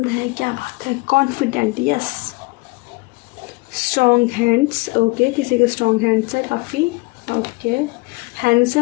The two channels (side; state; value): right; quieter; 25.0 dB